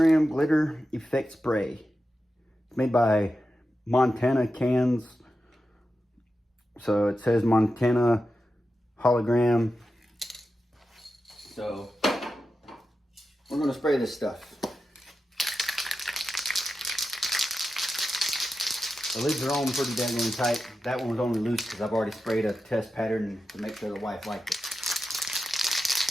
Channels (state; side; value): normal; both; correlation 0.91